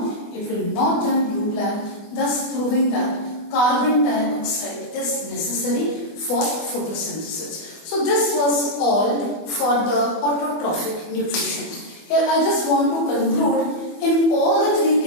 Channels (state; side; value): late; right; 24 ms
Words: It will not turn blue-black, thus proving that carbon dioxide is necessary for photosynthesis. So this was all for the autotrophic nutrition. Here I just want to conclude, in all the three